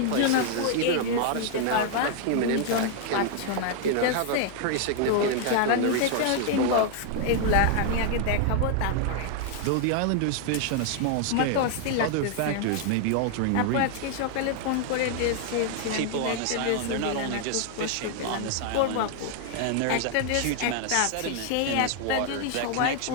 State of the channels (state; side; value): different; both; correlation 0.00